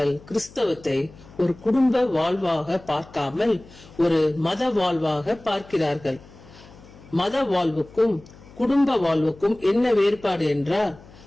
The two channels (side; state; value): left; noise; hum, 22 dB below the sound